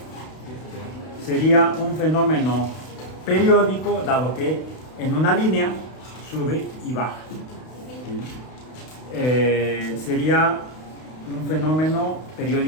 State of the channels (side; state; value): right; late; 32 ms